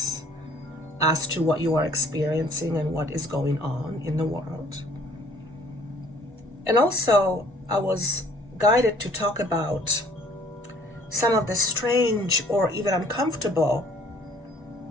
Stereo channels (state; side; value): normal; both; correlation 0.57